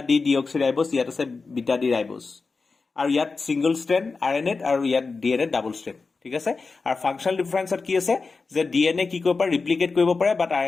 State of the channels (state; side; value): quieter; right; 4.3 dB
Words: ডি ডিঅক্সিৰাইবোজ ইয়াত আছে বিটা ডি ৰাইবোজ আৰু ইয়াত সিঙ্গল স্ট্ৰেন্ড RNA আৰু ইয়াত DNA ডাবল স্ট্ৰেন্ড ঠিক আছে আৰু ফাংচনেল ডিফাৰেন্সত কি আছে যে ডিএনএ কি কৰিব পাৰে ৰিপ্লিকেট কৰিব পাৰে বাট